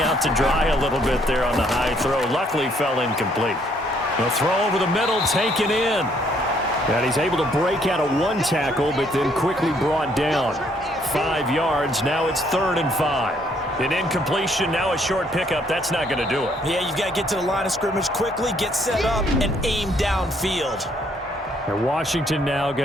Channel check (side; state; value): both; normal; correlation 0.67